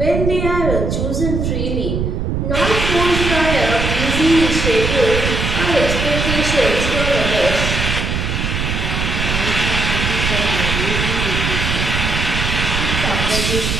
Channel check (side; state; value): right; noise; rumble, 1 dB below the sound